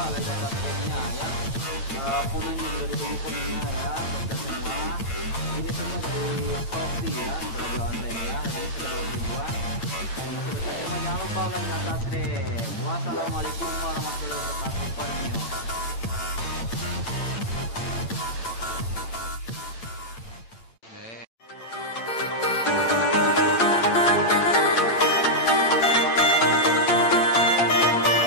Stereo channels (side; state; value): right; late; 8.9 ms